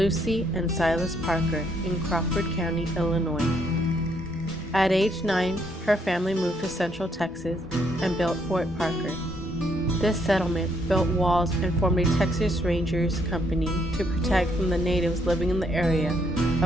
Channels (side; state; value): both; normal; correlation 0.71